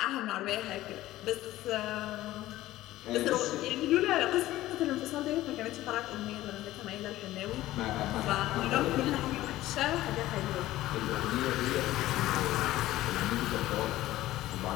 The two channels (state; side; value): quieter; right; 15.7 dB